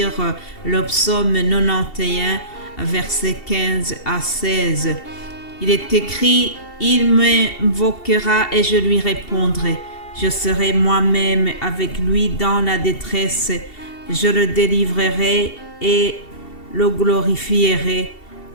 le psaume 91, versets 15 à 16. Il est écrit « Il m'invoquera et je lui répondrai. Je serai moi-même avec lui dans la détresse. Je le délivrerai et le glorifierai.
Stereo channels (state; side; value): late; right; 2.7 ms